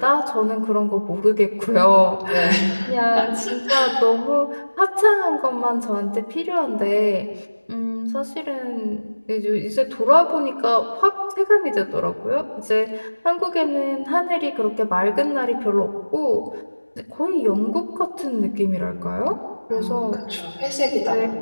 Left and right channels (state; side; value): inverted; both; correlation -1.00